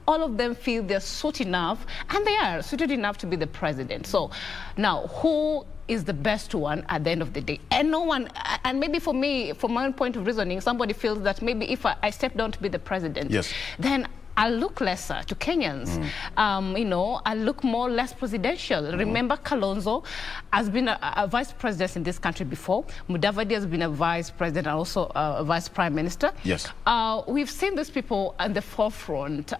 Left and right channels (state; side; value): quieter; right; 5.6 dB